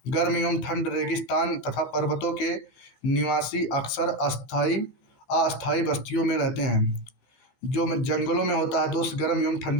गर्म एवं ठंड, रेगिस्तान तथा पर्वतों के निवासी अक्सर अस्थायी बस्तियों में रहते हैं। जो जंगलों में होता है दोस्त, गर्म एवं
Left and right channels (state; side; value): late; right; 15 ms